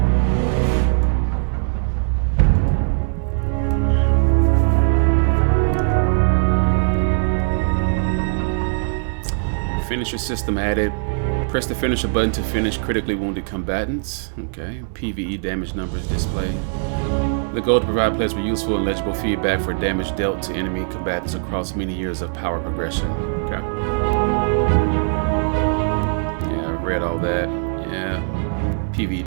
Finisher system added. Press the finisher button to finish critically wounded combatants. Okay. PvE damage numbers displayed. The goal to provide players with useful and legible feedback for damage dealt to enemy combatants across many years of power progression. Okay. Yeah, I've read all that. Yeah.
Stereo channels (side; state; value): left; silent; digital silence